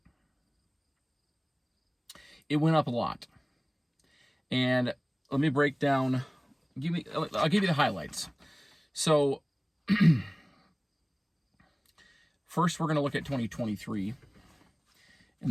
It went up a lot. And let me break down, I'll give you the highlights. So first we're going to look at 2023,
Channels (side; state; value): both; identical; correlation 1.00